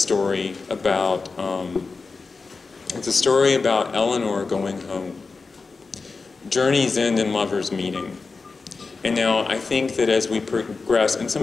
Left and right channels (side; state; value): right; quieter; 4.3 dB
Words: about Eleanor going home. Journeys end in lovers meeting. And now I think that as we progress, and